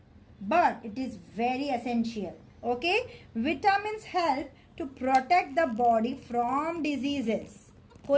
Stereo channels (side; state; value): both; identical; correlation 1.00